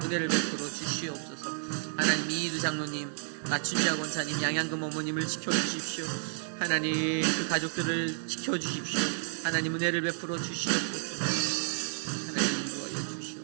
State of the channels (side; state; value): left; silent; 57 dB below the other